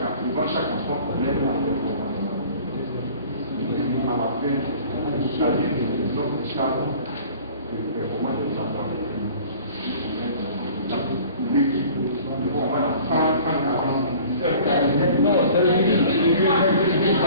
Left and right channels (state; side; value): inverted; both; correlation -0.47